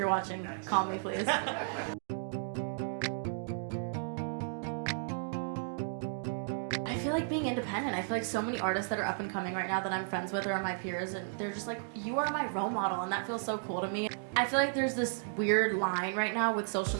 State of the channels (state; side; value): silent; left; digital silence